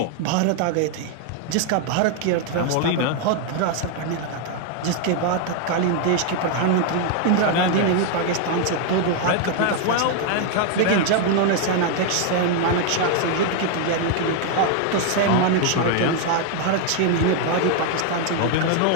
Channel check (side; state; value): both; different; correlation 0.00